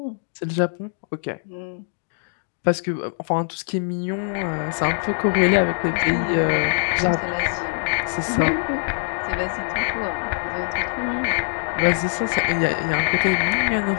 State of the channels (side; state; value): right; silent; digital silence